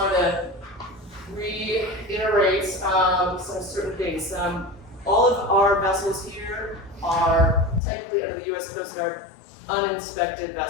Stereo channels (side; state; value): right; drops out; at 7.8 s